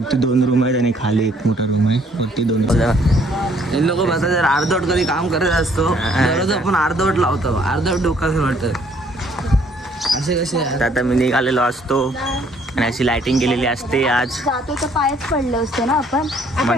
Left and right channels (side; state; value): both; normal; correlation 0.63